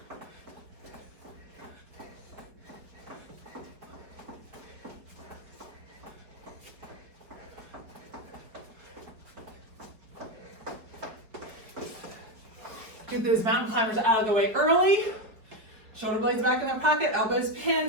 Get those mountain climbers out of the way early. Shoulder blades back in their pocket, elbows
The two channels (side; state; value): left; late; 4.7 ms